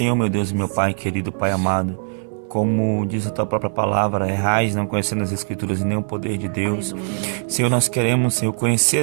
meu Deus e meu Pai querido, Pai amado, como diz a tua própria palavra, errais não conhecendo as Escrituras e nem o poder de Deus. Aleluia. Senhor, nós queremos, Senhor, conhecer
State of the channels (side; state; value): left; silent; digital silence